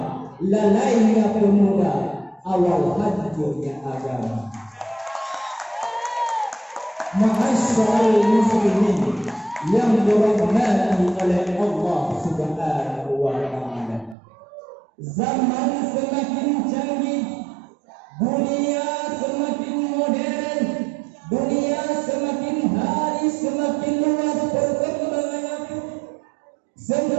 lalainya pemuda, awal hancurnya agama. Ma'asyiral muslimin yang dirahmati oleh Allah Subhanahu wa ta'ala, zaman semakin canggih, dunia semakin modern, dunia semakin hari semakin luas perkembangannya,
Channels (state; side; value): drops out; left; at 14.2 s